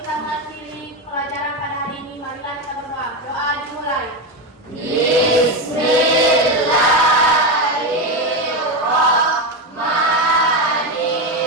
mengakhiri pelajaran pada hari ini, marilah kita berdoa. Doa dimulai.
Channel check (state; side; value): normal; both; correlation 0.13